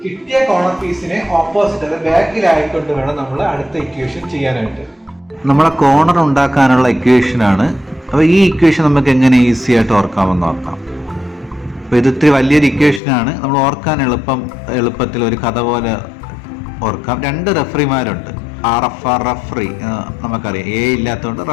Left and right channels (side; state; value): right; drops out; at 13.0 s